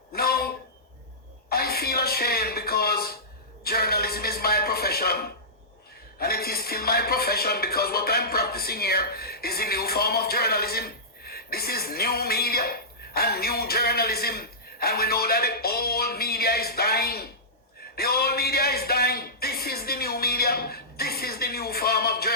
No, I feel ashamed because journalism is my profession. And it is still my profession because what I'm practicing here is a new form of journalism. This is new media and new journalism. And we know that the old media is dying. The old media is dying. This is the new media. This is the new form of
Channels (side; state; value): both; normal; correlation -0.17